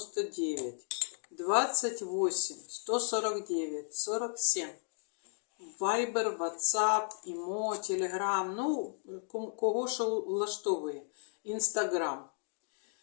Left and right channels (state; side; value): silent; right; 55 dB below the other